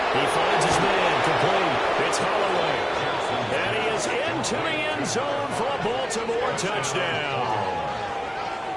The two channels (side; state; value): both; identical; correlation 1.00